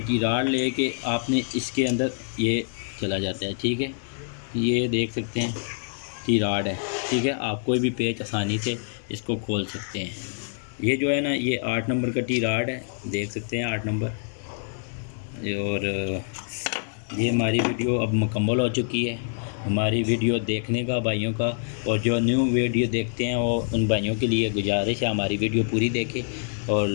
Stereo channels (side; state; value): right; silent; 61 dB below the other